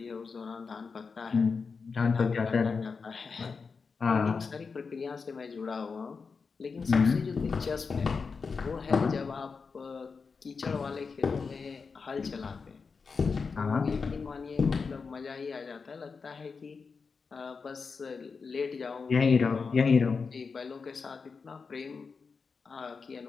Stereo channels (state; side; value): quieter; right; 5.0 dB